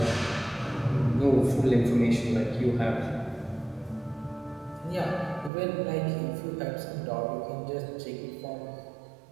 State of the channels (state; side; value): drops out; left; at 5.5 s